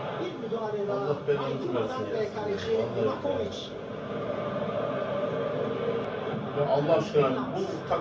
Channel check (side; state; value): both; identical; correlation 1.00